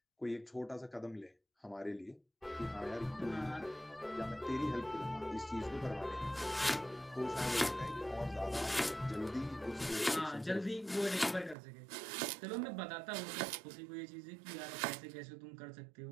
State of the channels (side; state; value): left; drops out; at 11.6 s